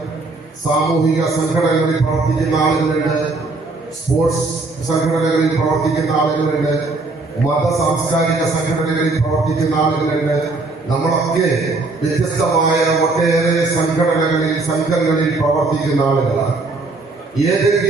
സാമൂഹിക സംഘടനകളിൽ പ്രവർത്തിക്കുന്ന ആളുകളുണ്ട്, സ്പോർട്സ് സംഘടനകളിൽ പ്രവർത്തിക്കുന്ന ആളുകളുണ്ട്, മത സാംസ്കാരിക സംഘടനകളിൽ പ്രവർത്തിക്കുന്ന ആളുകളുണ്ട്. നമ്മളൊക്കെ വ്യത്യസ്തമായ ഒട്ടേറെ സംഘങ്ങളിൽ പ്രവർത്തിക്കുന്ന ആളുകളാണ്.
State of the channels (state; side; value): quieter; left; 3.4 dB